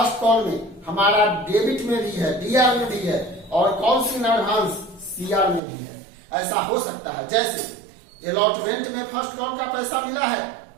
call में हमारा डेबिट में भी है, DR में भी है, और कॉल्स इन एडवांस CR में भी है, ऐसा हो सकता है। जैसे अलॉटमेंट में फर्स्ट कॉल का पैसा मिला है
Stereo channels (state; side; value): drops out; left; at 5.6 s